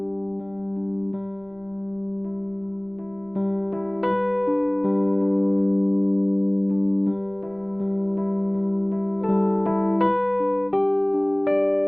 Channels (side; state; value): left; noise; rumble, 29 dB below the sound